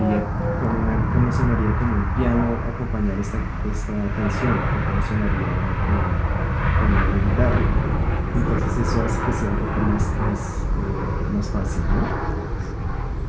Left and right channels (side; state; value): both; identical; correlation 1.00